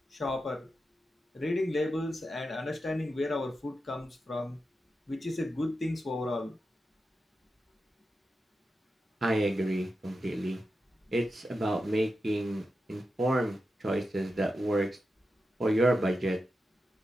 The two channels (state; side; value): normal; both; correlation 0.89